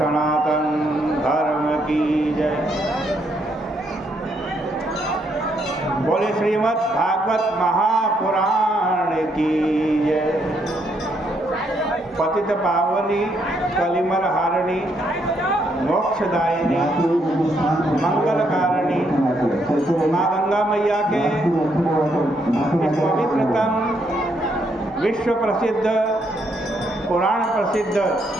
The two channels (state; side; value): normal; both; correlation 0.74